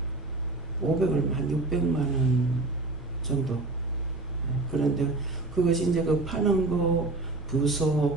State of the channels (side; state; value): left; quieter; 3.1 dB